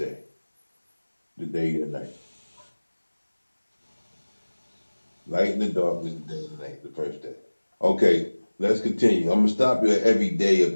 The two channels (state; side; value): inverted; both; correlation -1.00